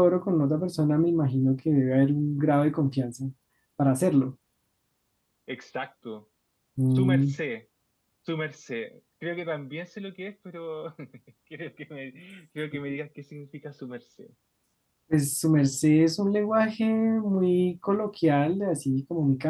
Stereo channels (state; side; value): identical; both; correlation 1.00